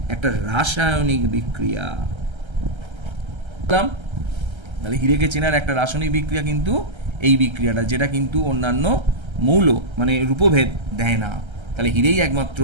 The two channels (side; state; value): left; late; 1.3 ms